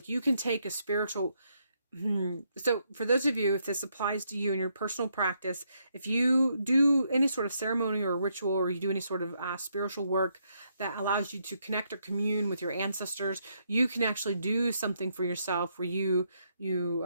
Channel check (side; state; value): both; inverted; correlation -0.76